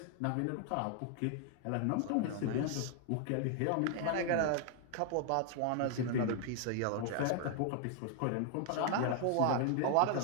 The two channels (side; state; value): both; different; correlation 0.00